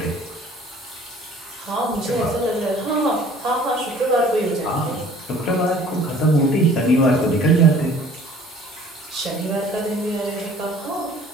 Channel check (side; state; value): both; normal; correlation 0.51